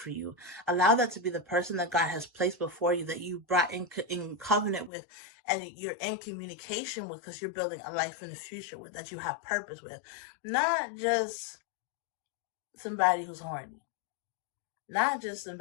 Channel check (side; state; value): right; drops out; at 4.9 s